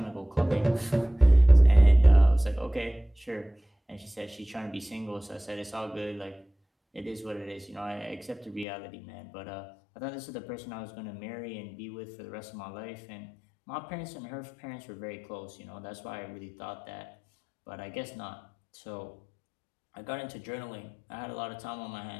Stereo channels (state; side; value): drops out; right; at 8.7 s